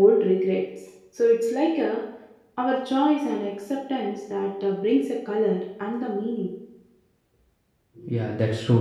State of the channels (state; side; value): identical; both; correlation 1.00